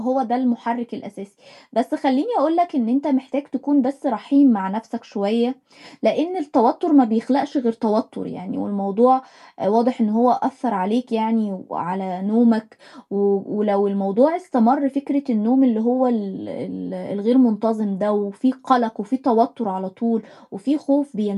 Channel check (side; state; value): both; identical; correlation 1.00